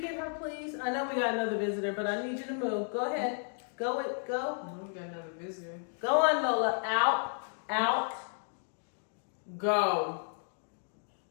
her, please? I know we got another visitor, but I need you to move. Go ahead. Go. No, we got another visitor. Go on, Lola. Out. Go.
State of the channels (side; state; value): right; silent; 56 dB below the other